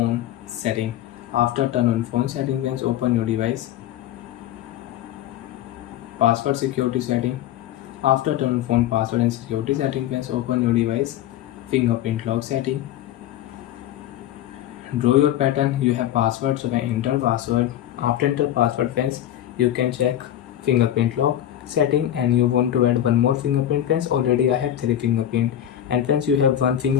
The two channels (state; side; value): quieter; right; 11.6 dB